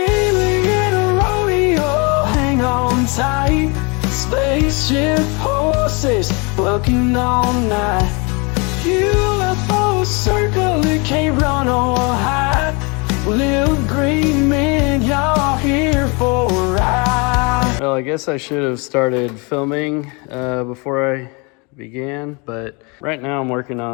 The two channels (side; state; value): right; quieter; 30.5 dB